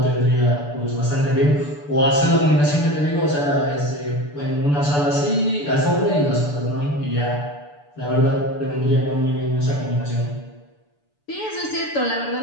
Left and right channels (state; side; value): late; right; 6.8 ms